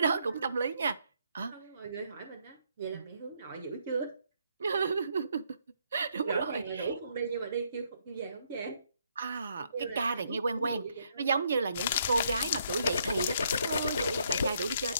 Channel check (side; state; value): both; inverted; correlation -0.72